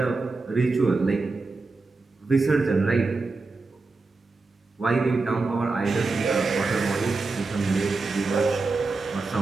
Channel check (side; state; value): left; quieter; 3.8 dB